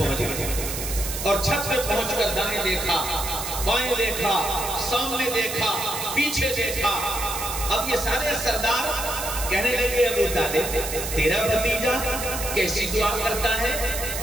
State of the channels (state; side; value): noise; right; hiss, 5 dB below the sound